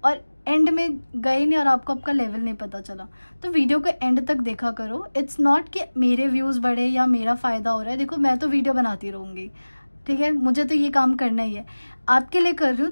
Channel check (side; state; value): both; inverted; correlation -1.00